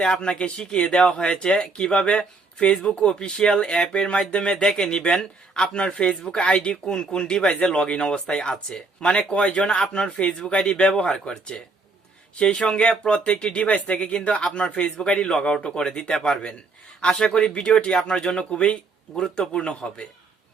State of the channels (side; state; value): left; quieter; 3.8 dB